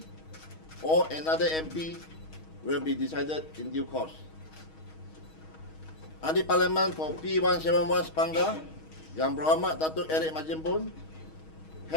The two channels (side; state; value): right; late; 6.3 ms